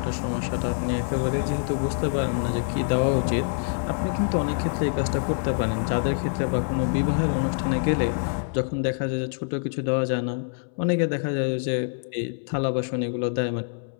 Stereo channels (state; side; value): silent; right; 61 dB below the other